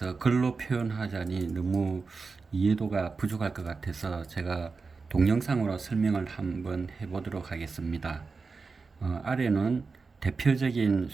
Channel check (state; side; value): quieter; left; 4.5 dB